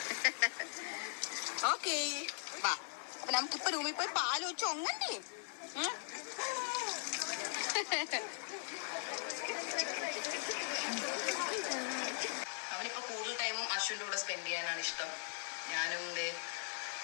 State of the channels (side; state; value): right; silent; 51 dB below the other